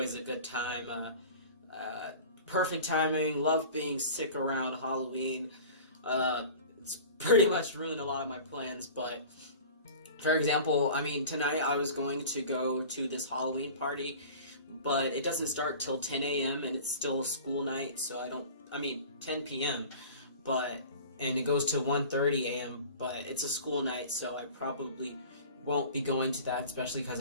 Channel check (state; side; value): inverted; both; correlation -0.39